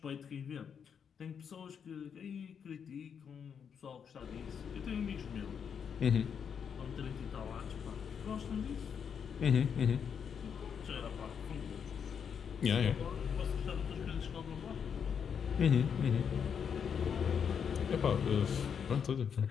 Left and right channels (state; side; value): quieter; right; 7.2 dB